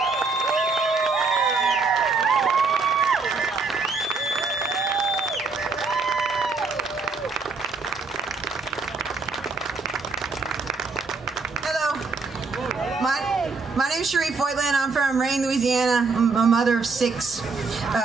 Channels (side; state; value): left; quieter; 4.3 dB